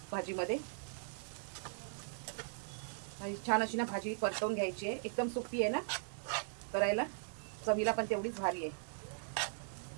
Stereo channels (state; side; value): silent; left; digital silence